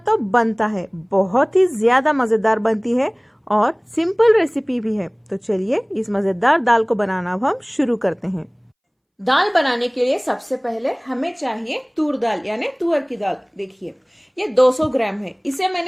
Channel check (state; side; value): identical; both; correlation 1.00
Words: बनता है, बहुत ही ज्यादा मजेदार बनती है और सिंपल रेसिपी भी है। तो चलिए इस मजेदार दाल को बनाना अब हम शुरू करते हैं। दाल बनाने के लिए सबसे पहले हमें चाहिए तूर दाल यानी तुअर की दाल। देखिए ये 200 ग्राम है। इसे